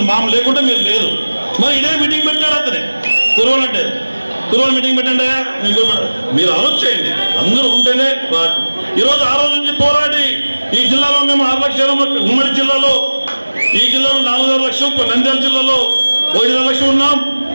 మామ లేకుంటే మీరు లేరు. మరి ఇదే మీటింగ్ పెట్టాడు అతనే కురవాలంటే కురవాళ్ళు మీటింగ్ పెట్టండి. మీరు ఆలోచన చేయండి, అందరూ ఉంటేనే. ఈరోజు ఆ రోజు నుంచి పోరాడి ఈ జిల్లాలో మేము 6 లక్షల, ఉమ్మడి జిల్లాలో ఈ జిల్లాలో 4.5 లక్షలు, నంద్యాల జిల్లాలో 1.5 లక్షలు ఉన్నాం.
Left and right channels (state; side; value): inverted; both; correlation -1.00